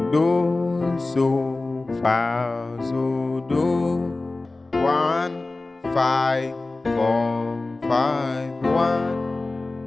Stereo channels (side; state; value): right; quieter; 3.2 dB